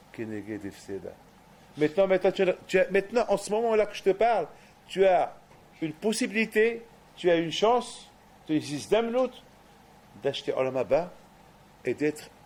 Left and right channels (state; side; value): identical; both; correlation 1.00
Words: Keneged Efseda. Maintenant, en ce moment-là que je te parle, tu as une possibilité, tu as une chance, tu as une Zdamnut d'acheter Olam Haba et d'être